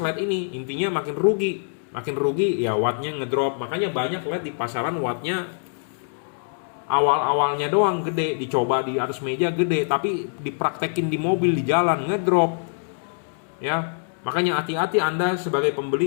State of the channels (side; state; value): right; silent; digital silence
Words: ini, intinya makin rugi. Makin rugi ya wattnya ngedrop. Makanya banyak LED di pasaran wattnya awal-awalnya doang gede, dicoba di atas meja gede, tapi dipraktekin di mobil di jalan ngedrop. Ya, makanya hati-hati Anda sebagai